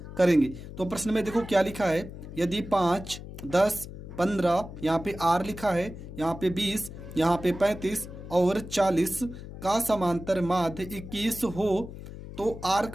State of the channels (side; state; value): left; noise; hum, 12 dB below the sound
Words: करेंगे। तो प्रश्न में देखो क्या लिखा है। यदि 5, 10, 15, यहाँ पे आर लिखा है, यहाँ पे 20, यहाँ पे 35 और 40 का समांतर माध्य 21 हो तो आर